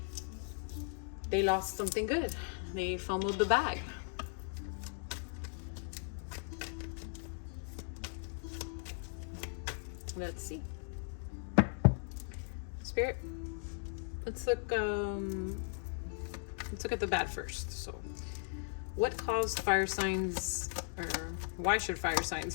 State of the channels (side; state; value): right; silent; digital silence